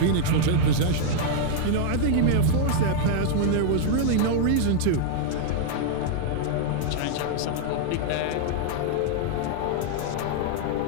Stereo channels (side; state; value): both; different; correlation -0.01